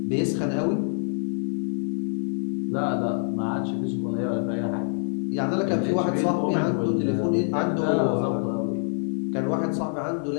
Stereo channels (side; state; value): right; silent; 61 dB below the other